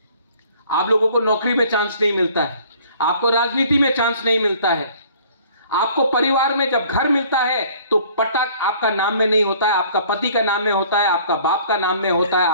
आप लोगों को नौकरी में चांस नहीं मिलता है, आपको राजनीति में चांस नहीं मिलता है, आपको परिवार में जब घर मिलता है तो पटक आपका नाम में नहीं होता है, आपका पति का नाम में होता है, आपका बाप का नाम में होता है,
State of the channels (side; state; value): both; inverted; correlation -0.54